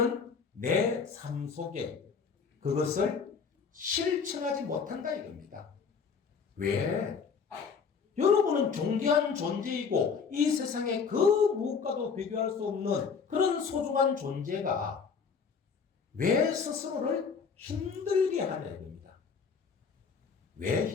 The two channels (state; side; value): quieter; right; 5.8 dB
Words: 내 삶 속에 그것을 실천하지 못한다 이겁니다. 왜? 여러분은 존귀한 존재이고 이 세상에 그 무엇과도 비교할 수 없는 그런 소중한 존재가 왜 스스로를 힘들게 하냐 이겁니다. 왜